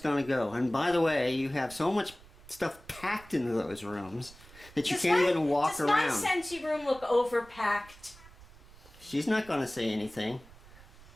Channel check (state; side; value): noise; right; rumble, 22 dB below the sound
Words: to go. And by the way, you have so much stuff packed into those rooms that you can't even walk around. Does my Scentsy room look overpacked? She's not going to say anything.